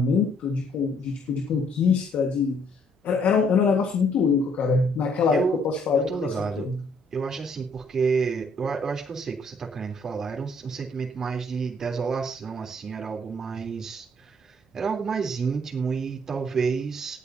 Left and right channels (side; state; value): both; normal; correlation 0.66